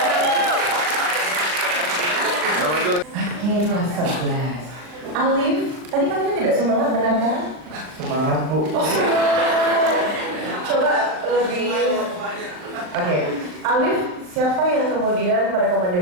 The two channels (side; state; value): left; late; 39 ms